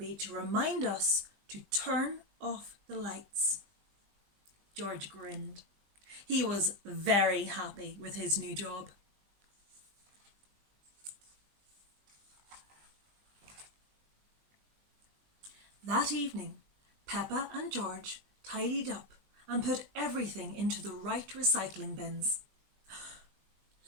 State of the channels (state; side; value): late; left; 20 ms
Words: to remind us to turn off the lights." George grinned. He was very happy with his new job. That evening, Peppa and George tidied up and put everything into the right recycling bins.